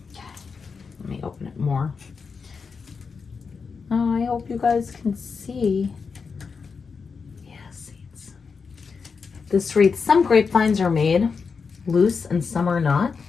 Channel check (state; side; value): quieter; right; 5.3 dB